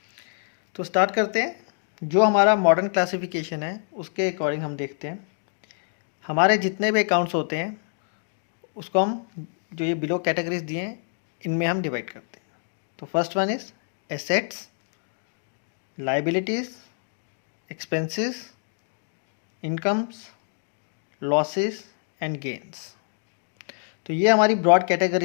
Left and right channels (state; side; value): silent; right; 61 dB below the other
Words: तो स्टार्ट करते हैं। जो हमारा मॉडर्न क्लासिफिकेशन है उसके अकॉर्डिंग हम देखते हैं हमारे जितने भी अकाउंट्स होते हैं उसको हम, जो ये बिलो कैटेगरीज दिए हैं, इनमें हम डिवाइड करते हैं। तो first one is assets, liabilities, expenses, incomes, losses and gains. तो ये हमारी ब्रॉड